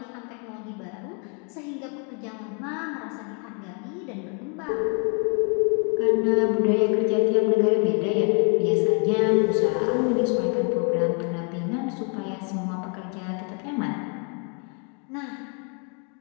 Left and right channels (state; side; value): quieter; right; 39.2 dB